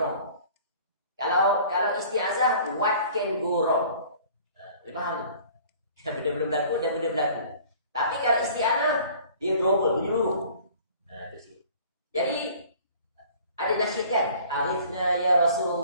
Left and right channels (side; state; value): both; inverted; correlation -0.50